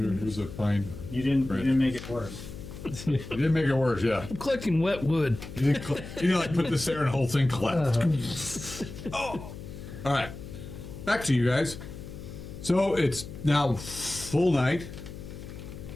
a pine? You didn't make it worse. You didn't make it worse, yeah. I'm collecting wet wood. You like put this there and the whole thing collapsed. Oh. All right. Back to you guys. So it's now full night.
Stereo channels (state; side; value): noise; left; hum, 12 dB below the sound